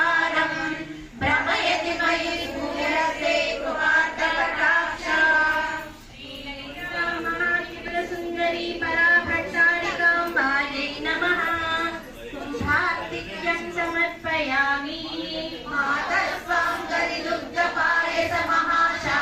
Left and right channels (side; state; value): both; identical; correlation 1.00